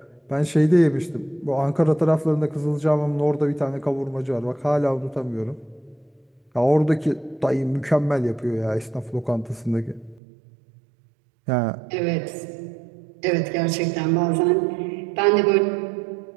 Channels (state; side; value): drops out; left; at 10.2 s